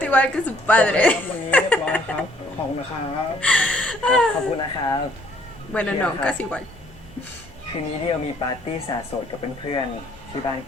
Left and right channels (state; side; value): normal; both; correlation 0.63